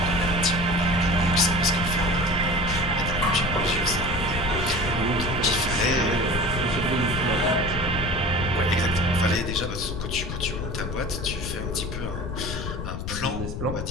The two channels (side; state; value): left; noise; rumble, 5 dB below the sound